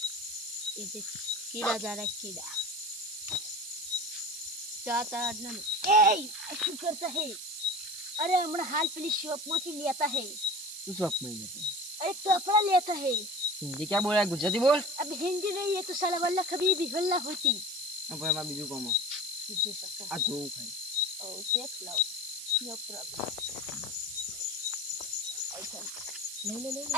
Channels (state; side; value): noise; right; hiss, 9 dB below the sound